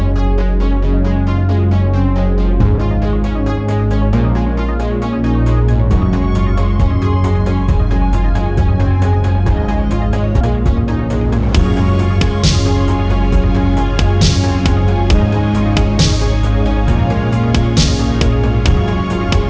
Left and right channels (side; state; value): both; identical; correlation 1.00